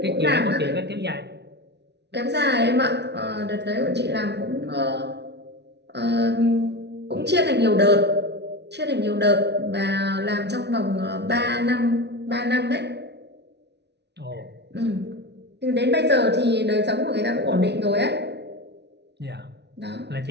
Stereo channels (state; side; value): late; left; 0.50 ms